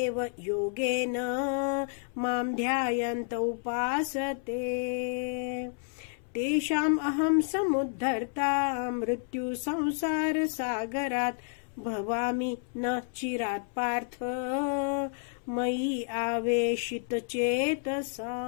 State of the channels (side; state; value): right; silent; 58 dB below the other